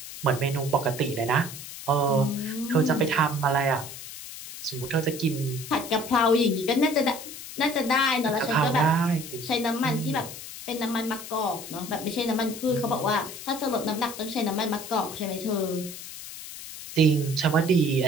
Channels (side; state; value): left; noise; hiss, 12 dB below the sound